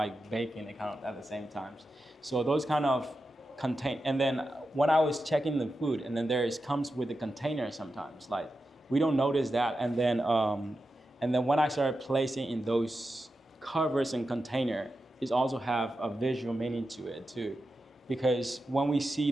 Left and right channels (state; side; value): normal; both; correlation 0.90